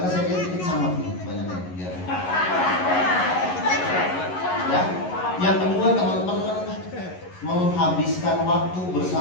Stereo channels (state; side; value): late; right; 11 ms